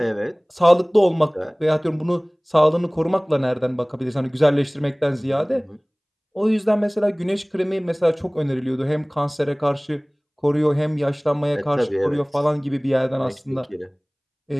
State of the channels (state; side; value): identical; both; correlation 1.00